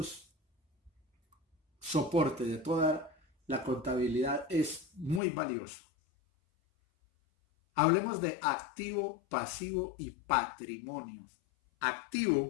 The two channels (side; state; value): right; drops out; at 5.2 s